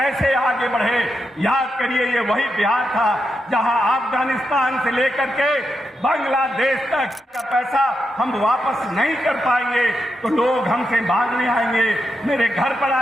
आगे बढ़े। याद करिए, ये वही बिहार था जहां अफगानिस्तान से लेकर के बांग्लादेश तक का पैसा हम वापस नहीं कर पाएंगे तो लोग हमसे मांगने आएंगे, मेरे घर पर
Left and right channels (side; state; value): both; normal; correlation 0.85